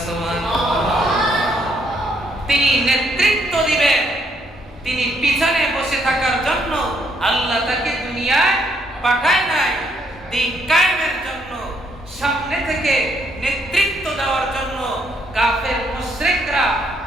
সুবহানাল্লাহ। তিনি নেতৃত্ব দিবেন, তিনি পিছনে বসে থাকার জন্য আল্লাহ তাকে দুনিয়ায় পাঠায় নাই, দিন কায়েমের জন্য, সামনে থেকে নেতৃত্ব দেওয়ার জন্য। কাফের মুশরিকরা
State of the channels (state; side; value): normal; both; correlation 0.71